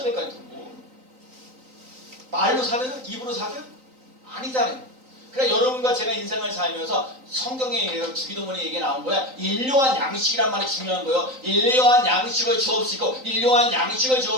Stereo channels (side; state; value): left; late; 3.9 ms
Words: 될 거 아니에요. 말로 사줘요? 입으로 사줘요? 아니잖아요. 그러니까 여러분과 제가 인생을 살면서 성경에 주기도문에 얘기 나온 거야. 일용한 양식이란 말이 중요한 거예요. 일용한 양식을 주옵시고 일용한 양식을